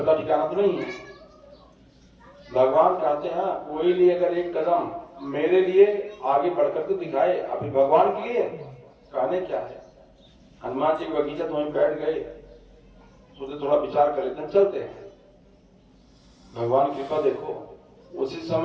ठिकाना तो नहीं है। भगवान कहते हैं कोई लिए अगर एक कदम मेरे लिए आगे बढ़कर के दिखाए, अभी भगवान के लिए कहने क्या है। हनुमान जी की बगीचा तो वहीं बैठ गए, सोचे थोड़ा विचार कर लेते हैं चलते हैं। भगवान की कृपा देखो उसी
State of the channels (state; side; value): identical; both; correlation 1.00